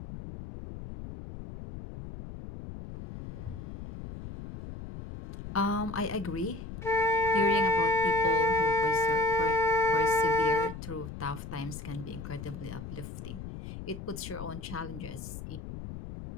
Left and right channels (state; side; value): noise; left; rumble, 10 dB below the sound